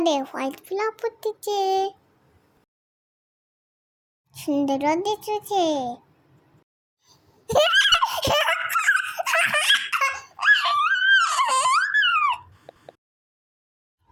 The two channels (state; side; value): identical; both; correlation 1.00